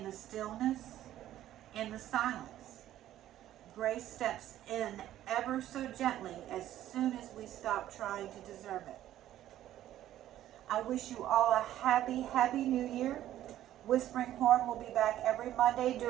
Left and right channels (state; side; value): quieter; left; 12.8 dB